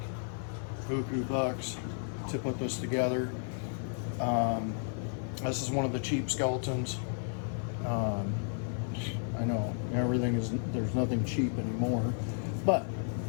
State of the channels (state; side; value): silent; right; 56 dB below the other